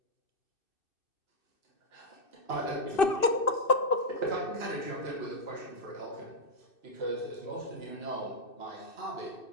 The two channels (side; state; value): right; late; 2.6 ms